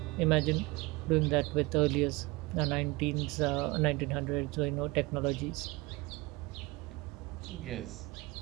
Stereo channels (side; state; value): left; quieter; 23.2 dB